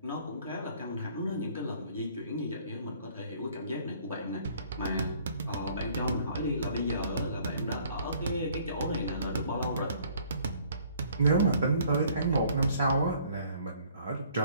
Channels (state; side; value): inverted; both; correlation -0.58